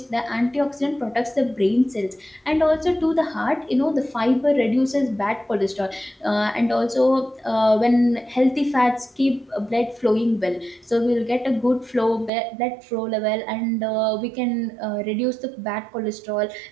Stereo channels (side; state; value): left; drops out; at 12.3 s